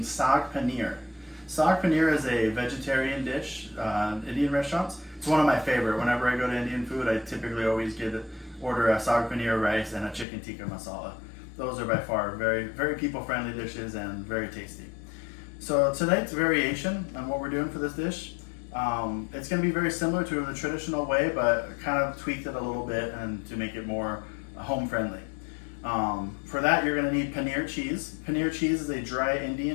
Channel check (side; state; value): right; drops out; at 10.2 s